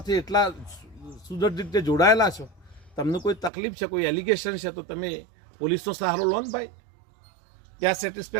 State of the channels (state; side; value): drops out; left; at 3.5 s